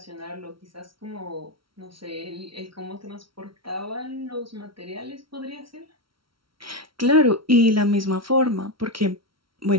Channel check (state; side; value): late; left; 0.74 ms